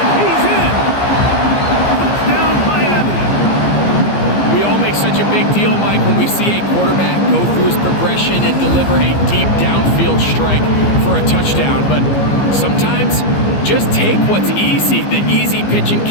he's in. Touchdown, Miami. We all make such a big deal, Mike, when we see a quarterback go through his progression and deliver a deep downfield strike for a touchdown. But sometimes just take what's easy, the easy pitch and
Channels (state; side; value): late; right; 15 ms